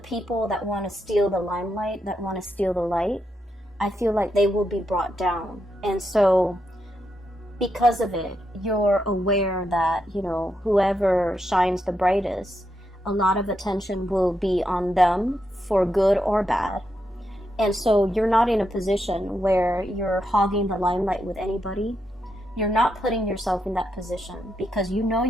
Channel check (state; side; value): normal; both; correlation 0.83